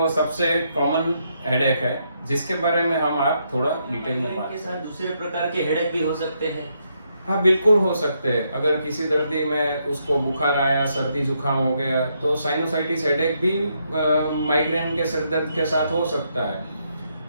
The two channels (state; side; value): inverted; both; correlation -0.77